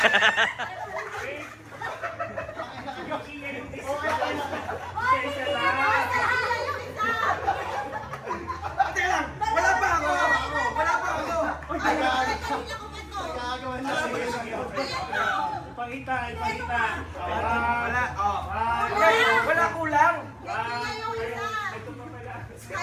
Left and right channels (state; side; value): identical; both; correlation 1.00